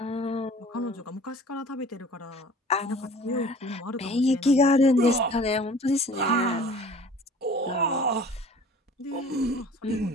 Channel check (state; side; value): normal; both; correlation 0.47